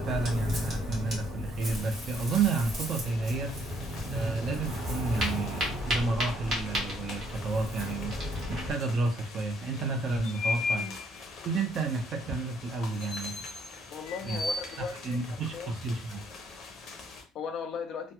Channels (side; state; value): both; normal; correlation 0.68